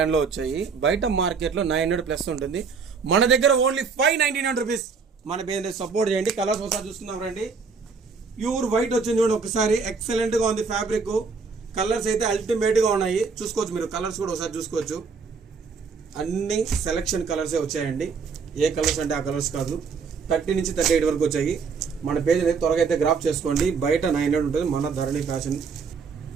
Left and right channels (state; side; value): quieter; left; 5.3 dB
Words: వచ్చాయి. బయట మార్కెట్లో 900+ ఉంటుంది, మన దగ్గర ఓన్లీ 599 రూపీస్. మన పేజ్ సపోర్ట్ చేయండి. కలర్స్ ఒకసారి చూస్తున్నాం రండి. ప్యూర్ వైట్ వచ్చింది చూడండి, ఒకసారి ఎక్సలెంట్ గా ఉంది. ఫ్యాబ్రిక్ కలర్స్ అయితే అల్టిమేట్ గా ఉన్నాయి. చూసుకోవచ్చు, మీరు కలర్స్ కూడా ఒకసారి చూసుకోవచ్చు. అన్ని సెలెక్షన్ కలర్సే వచ్చాయండి. ఏ కలర్స్ అంటే ఆ కలర్స్ కాదు. 30 నుంచి 38 వరకు వచ్చాయి. మన పేజ్ అయితే త్వరగా అయితే గ్రాఫ్ చేసుకోండి. బయట 900 ఉంటుంది, మన ధరణి ఫ్యాషన్.